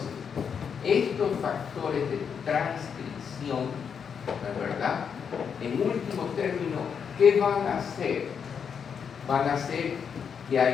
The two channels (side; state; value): right; quieter; 6.9 dB